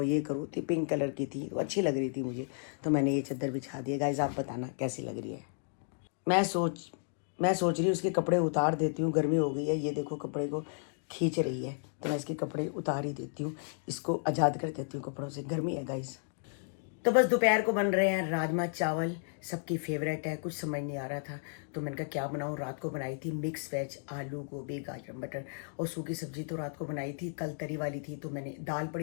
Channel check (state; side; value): silent; right; digital silence